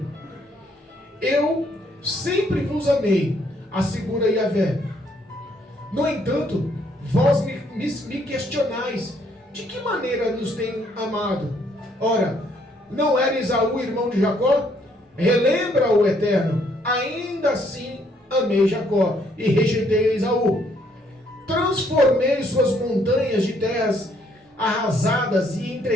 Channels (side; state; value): both; normal; correlation 0.68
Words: Eu sempre vos amei, assegura Yahvé. No entanto, vós me questionais, de que maneira nos tem amado? Ora, não era Esaú irmão de Jacó? Relembra o Eterno, ainda assim amei Jacó e rejeitei Esaú. Transformei suas montanhas de terras arrasadas e